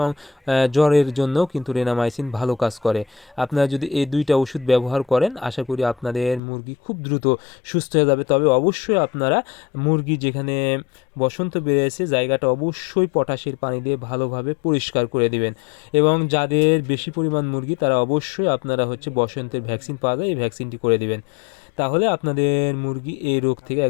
জ্বরের জন্য কিন্তু রেনামাইসিন ভালো কাজ করে। আপনারা যদি এই দুইটা ওষুধ ব্যবহার করেন আশা করি আপনাদের মুরগি খুব দ্রুত সুস্থ হয়ে যাবে। তবে অবশ্যই আপনারা মুরগি যেখানে বসন্ত বেড়েছে জায়গাটা অবশ্যই পটাশের পানি দিয়ে ভালোভাবে পরিষ্কার করে দিবেন। এবং যাদের বেশি পরিমাণ মুরগি তারা অবশ্যই আপনারা বসন্তের ভ্যাকসিন পাওয়া যায়, এই ভ্যাকসিনটি করে দিবেন। তাহলে আপনাদের মুরগি এই রোগ থেকে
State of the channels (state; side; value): drops out; right; at 6.4 s